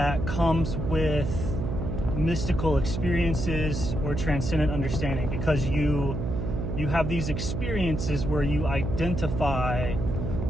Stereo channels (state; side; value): noise; right; hum, 3 dB below the sound